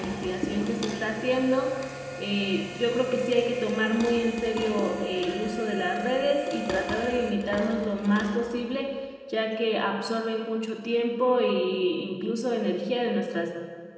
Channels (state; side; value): identical; both; correlation 1.00